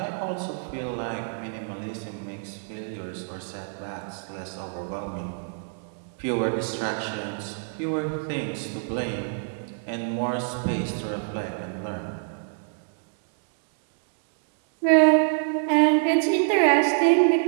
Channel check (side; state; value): left; silent; digital silence